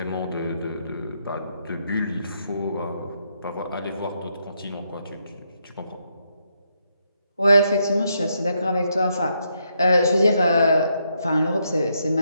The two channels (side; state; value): both; inverted; correlation -0.78